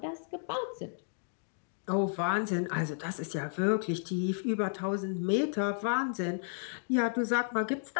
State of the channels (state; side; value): silent; right; digital silence